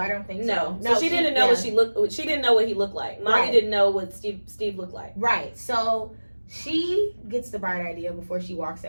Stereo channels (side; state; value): both; inverted; correlation -1.00